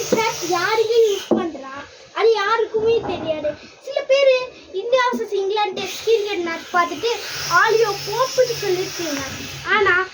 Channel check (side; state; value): both; identical; correlation 1.00